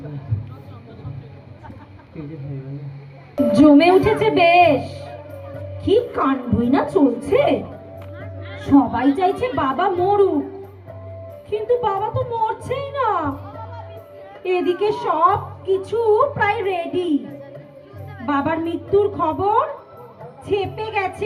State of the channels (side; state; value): both; identical; correlation 1.00